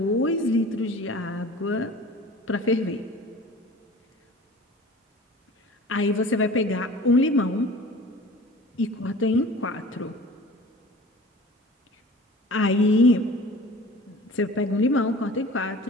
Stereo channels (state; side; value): normal; both; correlation 0.42